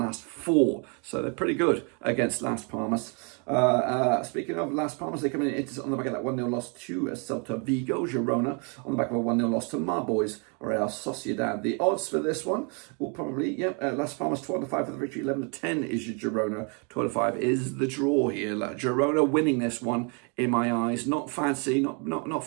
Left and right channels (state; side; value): quieter; left; 36.0 dB